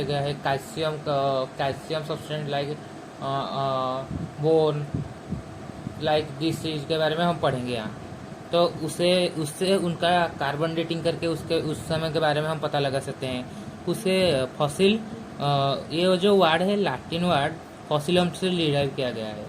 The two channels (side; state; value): both; identical; correlation 1.00